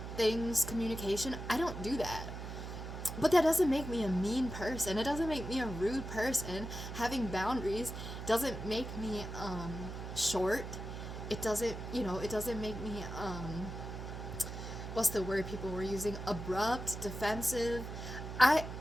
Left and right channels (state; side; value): noise; right; hum, 8 dB below the sound